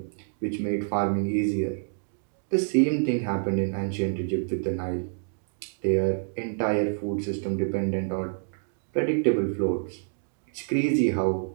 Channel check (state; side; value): silent; left; digital silence